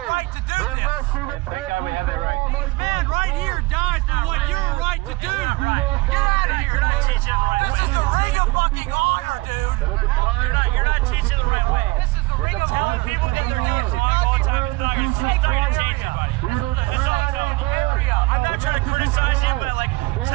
right to do this. Thank God we have that right. This man right here dies for what you're right to do. Get out of here. This is the ring of fucking honor, dude. You're not teaching the right way. This is the ring of honor. People think they're doing it wrong all the time. It's not your fault. You're not changing anybody. I'm not trying to criticize you, but like,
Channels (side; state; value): left; quieter; 22.1 dB